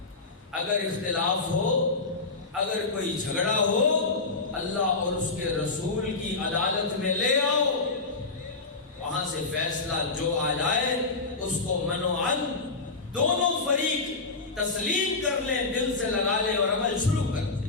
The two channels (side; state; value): right; quieter; 3.9 dB